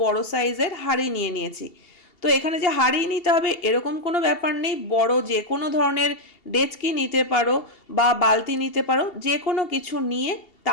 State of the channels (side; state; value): right; late; 2.7 ms